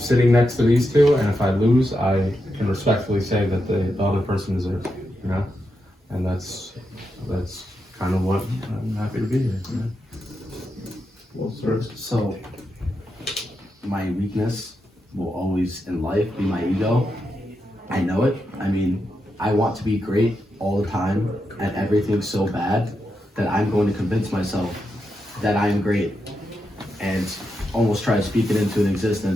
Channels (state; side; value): normal; both; correlation 0.85